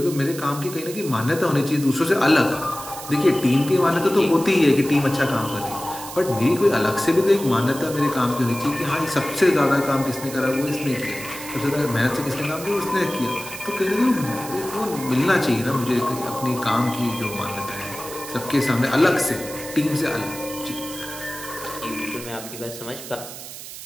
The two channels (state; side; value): noise; right; hiss, 12 dB below the sound